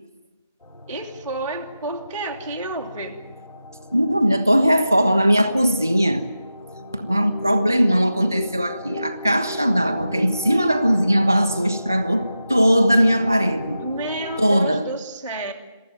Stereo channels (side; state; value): both; inverted; correlation -0.91